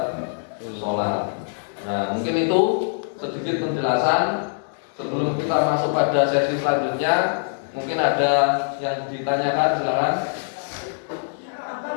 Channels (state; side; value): silent; right; digital silence